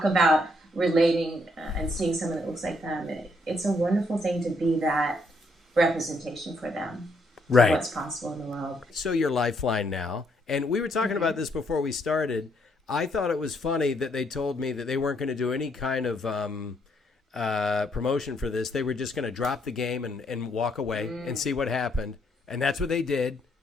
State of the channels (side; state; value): both; normal; correlation 0.72